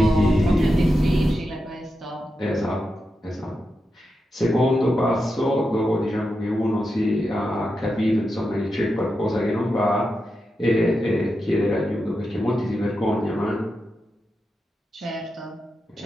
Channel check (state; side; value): normal; both; correlation 0.88